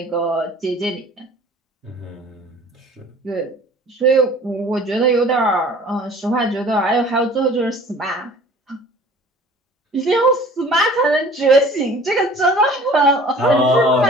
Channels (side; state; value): both; normal; correlation 0.48